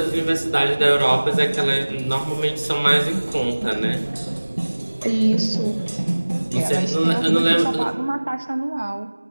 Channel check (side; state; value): both; inverted; correlation -1.00